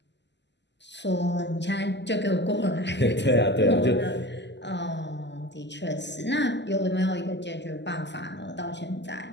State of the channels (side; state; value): right; late; 0.51 ms